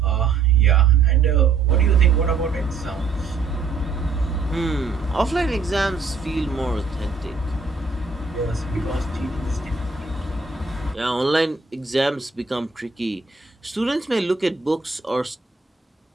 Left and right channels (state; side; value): quieter; left; 4.7 dB